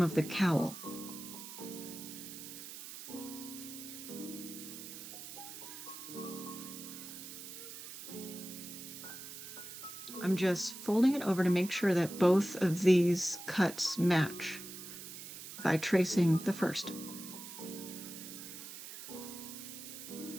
the cowl. I'm just folding it over to make sure that both of these cuts match by tracing the first.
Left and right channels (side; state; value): right; noise; hiss, 11 dB below the sound